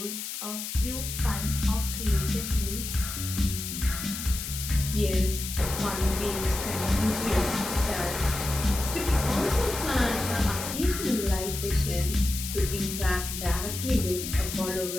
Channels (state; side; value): noise; left; hiss, 6 dB below the sound